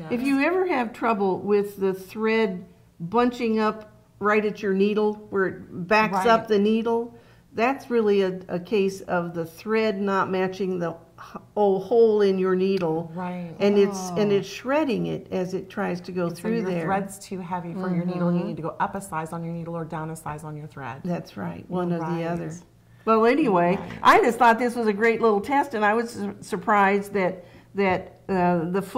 if you ever have trouble with the thread bunching up right at your needle where it backs up the needle, that's really a case of the thread not matching the hole in your needle, and it's shredding it as it tries to go through your there. Thread's too heavy for your needle. You need to go up a size on your needle or down a size on your thread. That's right, one or the other. Well, anyway, I just thought this was a great little test, and I was surprised that the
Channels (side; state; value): both; identical; correlation 1.00